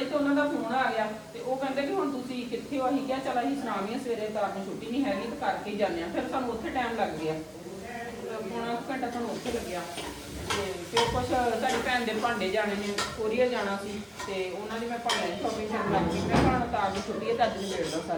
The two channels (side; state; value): both; identical; correlation 1.00